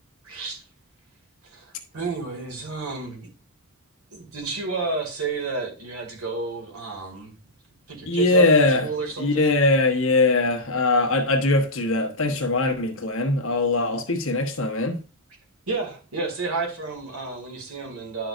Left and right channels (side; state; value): both; normal; correlation -0.10